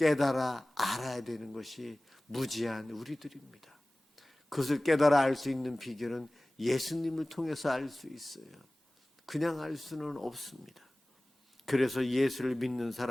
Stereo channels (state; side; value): normal; both; correlation 0.98